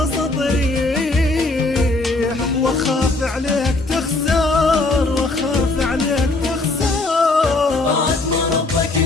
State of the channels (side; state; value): right; quieter; 3.1 dB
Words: ريح، واخاف عليك تخسر، واخاف عليك تخسر. بعد ما ربك